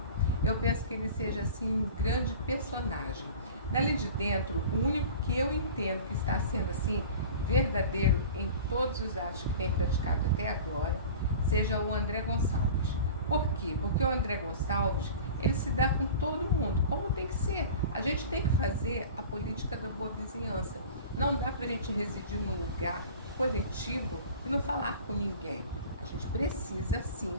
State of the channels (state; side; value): inverted; both; correlation -0.39